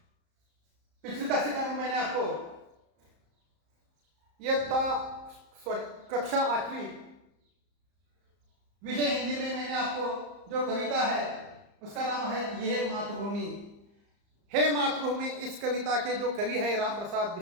पिछली कक्षा में मैंने आपको कक्षा 8वीं विषय हिंदी में मैंने आपको जो कविता है उसका नाम है ये मातृभूमि। हे मातृभूमि, इस कविता के जो कवि है राम प्रसाद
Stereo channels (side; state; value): left; late; 34 ms